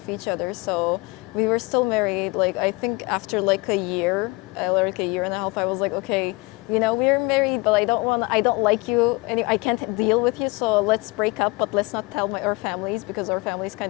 each other. So we were still married. Like, I think after like a year, like a year and a half, I was like, okay, you know, we're married, but I don't like you, and I can't deal with you. So let's break up, but let's not tell our families because our families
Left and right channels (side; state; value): right; quieter; 25.2 dB